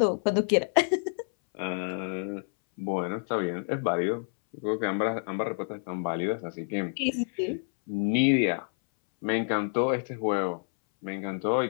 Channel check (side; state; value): right; silent; 59 dB below the other